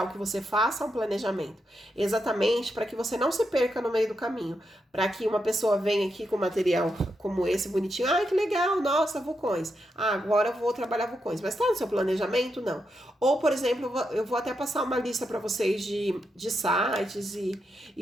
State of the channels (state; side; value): normal; both; correlation 0.84